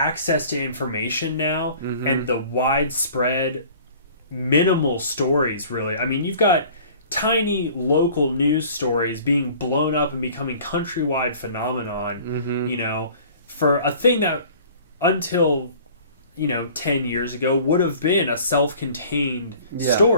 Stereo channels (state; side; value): inverted; both; correlation -0.48